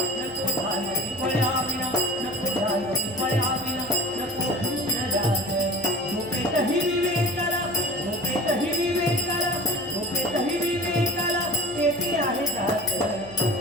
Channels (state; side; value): noise; right; hum, 19 dB below the sound